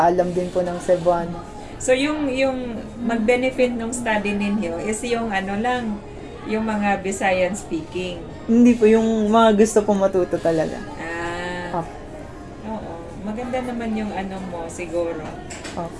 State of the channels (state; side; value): identical; both; correlation 1.00